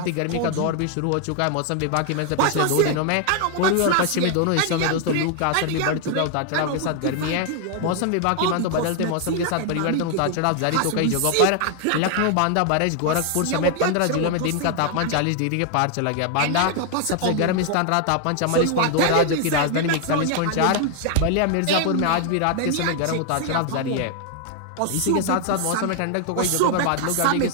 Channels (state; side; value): different; both; correlation 0.00